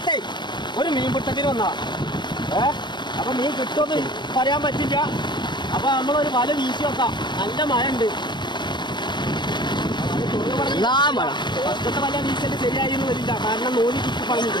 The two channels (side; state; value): right; late; 0.22 ms